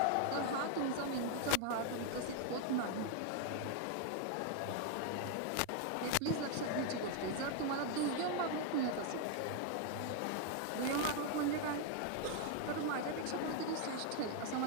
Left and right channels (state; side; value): different; both; correlation 0.00